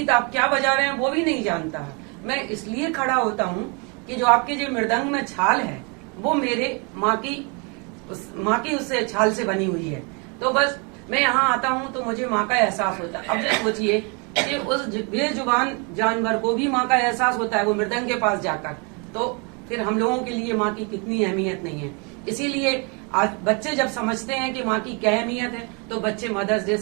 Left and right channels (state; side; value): quieter; left; 33.3 dB